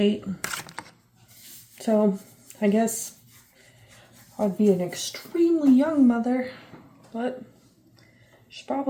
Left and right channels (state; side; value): identical; both; correlation 1.00